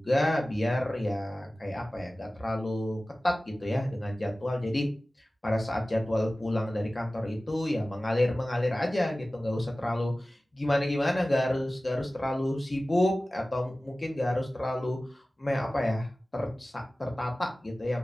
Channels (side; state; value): both; normal; correlation 0.97